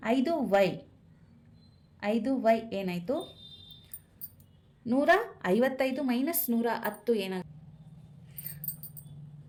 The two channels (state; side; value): identical; both; correlation 1.00